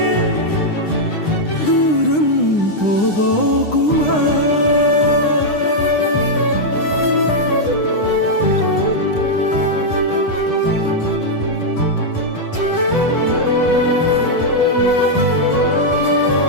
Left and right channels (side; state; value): right; late; 9.8 ms